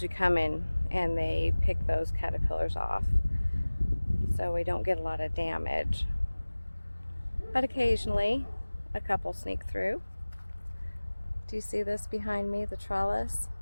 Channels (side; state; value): both; inverted; correlation -1.00